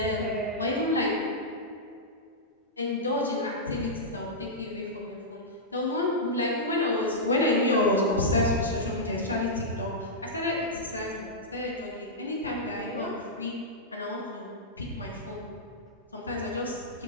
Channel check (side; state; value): both; normal; correlation -0.11